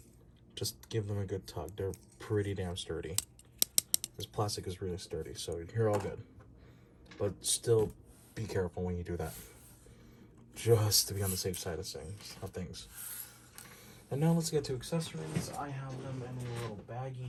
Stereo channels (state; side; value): identical; both; correlation 1.00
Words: Just give them a good tug. They're pretty damn sturdy. This plastic is really sturdy, so you're all good. But still be careful when you do that, just to be on the safe side of things. And now let's get to accessories. I have them in a little